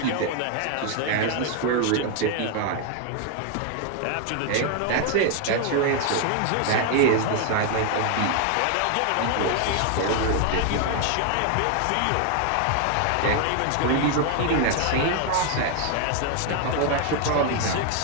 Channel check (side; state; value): both; different; correlation 0.01